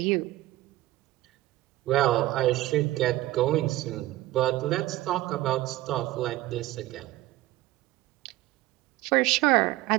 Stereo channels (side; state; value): left; quieter; 16.8 dB